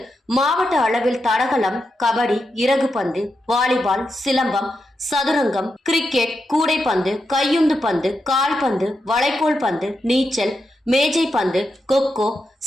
மாவட்ட அளவில் தடகளம், கபடி, இறகுப்பந்து, வாலிபால், சிலம்பம், சதுரங்கம், கிரிக்கெட், கூடைப்பந்து, கையுந்து பந்து, கால்பந்து, வளைக்கோல் பந்து, நீச்சல், மேஜை பந்து, கொக்கோ,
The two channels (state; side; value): normal; both; correlation 0.86